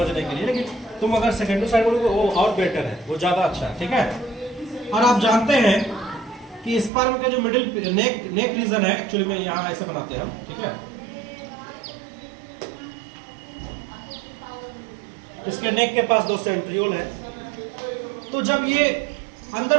के लिए। लेकिन तुम अगर सेकेंडरी साइड बोलोगे वो और बेटर है, वो ज्यादा अच्छा है। ठीक है, और आप जानते हैं कि स्पर्म के जो मिडिल नेक रीजन है, एक्चुअली में यहाँ ऐसे बनाते हैं हम। ठीक है, इसके नेक के पास 2 सेंट्रियोल है। तो जब ये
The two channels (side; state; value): left; drops out; at 6.9 s